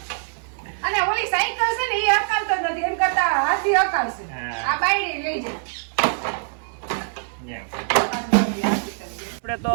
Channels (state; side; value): silent; left; 63 dB below the other